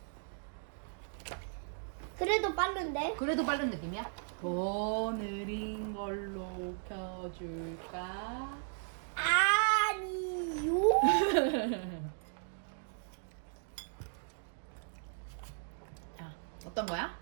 그래도 빠른데? 그래도 빠른 느낌이야? 더 느린 걸로 켜줄까? 아니요. 자, 어떤 거야?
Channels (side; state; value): left; silent; digital silence